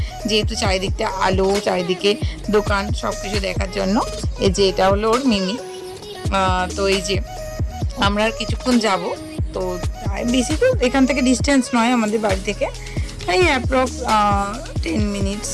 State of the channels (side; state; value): both; identical; correlation 1.00